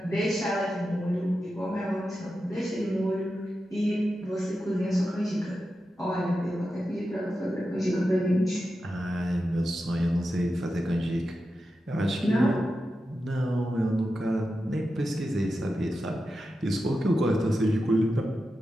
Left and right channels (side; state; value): both; normal; correlation 0.90